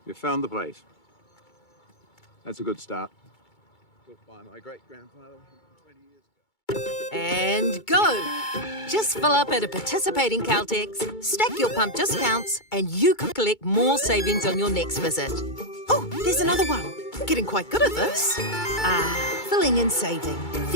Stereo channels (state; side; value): late; right; 2.2 ms